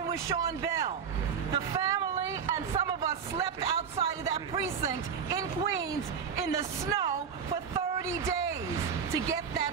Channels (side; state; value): left; quieter; 6.8 dB